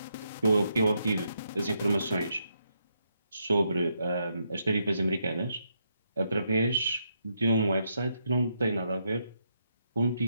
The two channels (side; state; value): both; inverted; correlation -0.79